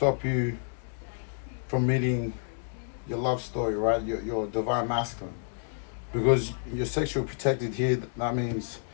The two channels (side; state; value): right; silent; digital silence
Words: you from meeting your love story, right, your divine masculine. Because you're sexually protected here, that means,